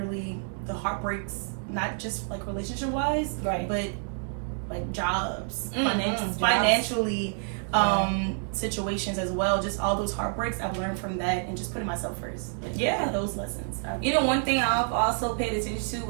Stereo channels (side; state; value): left; silent; 59 dB below the other